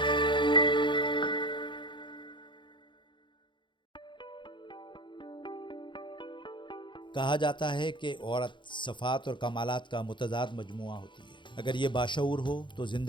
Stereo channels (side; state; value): right; late; 0.23 ms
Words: جاتا ہے کہ عورت صفات اور کمالات کا متضاد مجموعہ ہوتی ہے. اگر یہ باشعور ہو تو